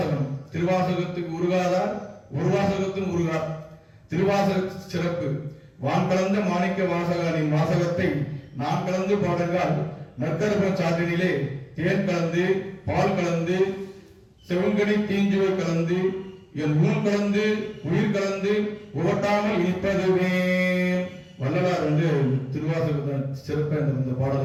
திருவாசகத்துக்கு உருகாதார் ஒரு வாசகத்தின் உருகார். திருவாசக சிறப்பு. வான் கலந்த மாணிக்க வாசகனின் வாசகத்தை நான் கலந்து பாடுங்கால் நற்கரப சாற்றினிலே தேன் கலந்து பால் கலந்து செவங்கனி தீஞ்சுவை கலந்து என் ஊன் கலந்து உயிர் கலந்து உவட்டாமல் இனிப்பதுவே. வள்ளலார் திருவாசகத்தை சிறப்பை இந்த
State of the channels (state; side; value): identical; both; correlation 1.00